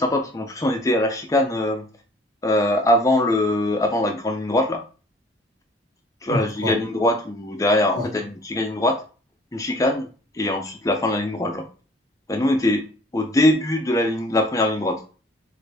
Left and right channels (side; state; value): both; normal; correlation 0.52